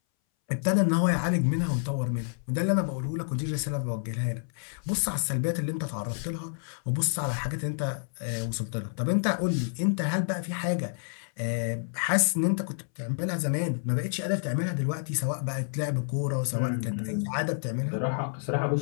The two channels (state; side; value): silent; right; 59 dB below the other